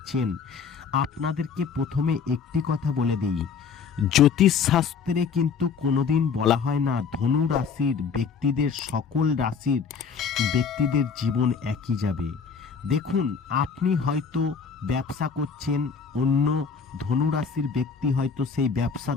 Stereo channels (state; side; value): quieter; right; 6.1 dB